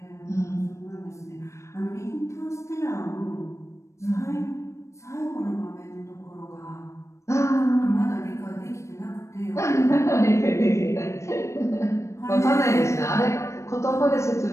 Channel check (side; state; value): right; late; 0.14 ms